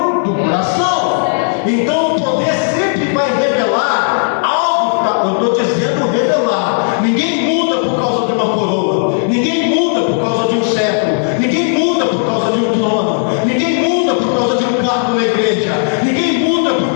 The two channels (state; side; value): silent; right; digital silence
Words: do coração. Então o poder sempre vai revelar algo que está, eu estou dizendo revelar. Ninguém muda por causa de uma coroa. Ninguém muda por causa de um cetro. Ninguém muda por causa de um trono. Ninguém muda por causa de um cargo na igreja. Ninguém muda por